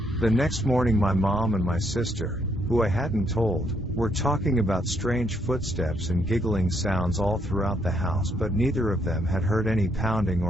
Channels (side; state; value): both; normal; correlation 0.73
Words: The next morning my mom and my sister, who I hadn't told, were talking about strange footsteps and giggling sounds all throughout the house, but neither of them had heard any pounding